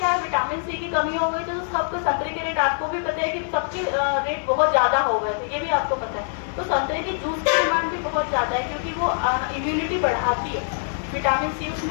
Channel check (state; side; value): silent; right; digital silence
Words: है, विटामिन सी की कमी हो गई थी तो सबके संतरे के रेट आपको भी पता है कि सबके रेट बहुत ज़्यादा हो गए थे, ये भी आपको पता है। तो संतरे की जूस की डिमांड भी बहुत ज़्यादा है क्योंकि वो इम्यूनिटी बढ़ाती है, विटामिन सी